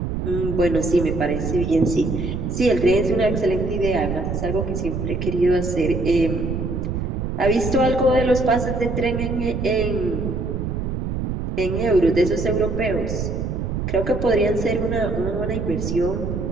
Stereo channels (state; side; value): noise; right; rumble, 3 dB below the sound